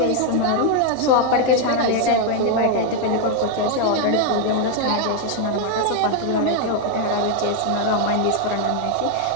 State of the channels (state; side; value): different; both; correlation 0.01